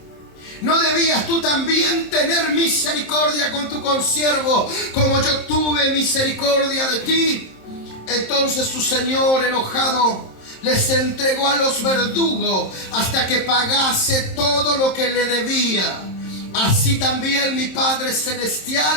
¿No debías tú también tener misericordia con tu consiervo, como yo tuve misericordia de ti? Entonces su señor, enojado, les entregó a los verdugos hasta que pagase todo lo que le debía. Así también mi Padre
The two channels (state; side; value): late; right; 27 ms